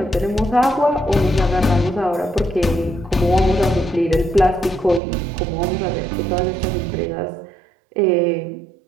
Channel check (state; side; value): drops out; left; at 5.0 s